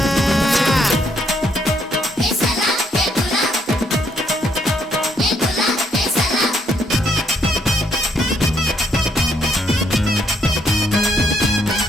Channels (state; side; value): normal; both; correlation 0.72